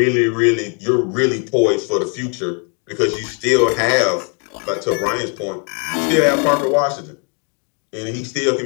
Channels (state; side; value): quieter; right; 39.3 dB